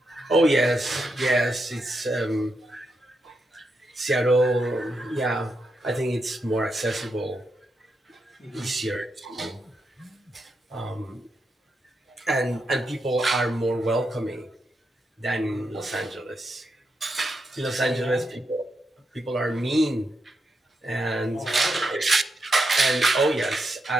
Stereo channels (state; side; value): normal; both; correlation 0.84